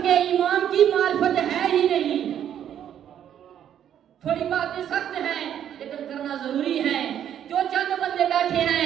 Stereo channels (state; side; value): quieter; left; 9.9 dB